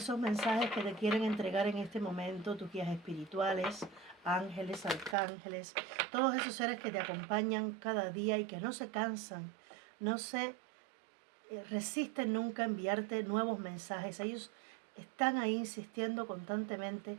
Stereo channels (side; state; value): left; drops out; at 5.2 s